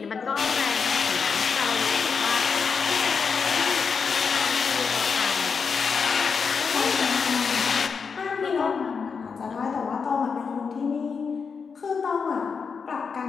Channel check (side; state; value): right; quieter; 5.7 dB